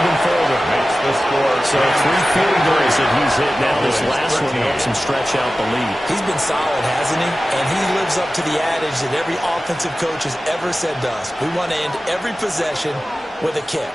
further. Makes the score. So 3 field goals that he's hit now. This last one helps him stretch out the lead. He's been solid, hasn't he? And he lives up to the adage that every offensive coach has ever said to us. We want to end every possession with a kick.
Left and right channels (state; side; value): normal; both; correlation 0.95